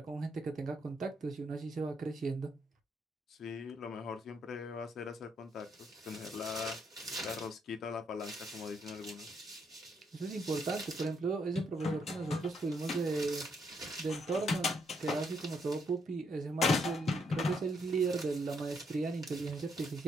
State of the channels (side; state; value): both; normal; correlation 0.74